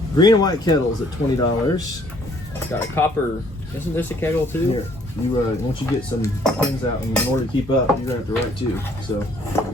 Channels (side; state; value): both; normal; correlation 0.61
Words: Green and white kettles at $20. Got a copper. Isn't this a kettle too? Here, you once you get some pins out, and in order to keep up, you're gonna have to write too. So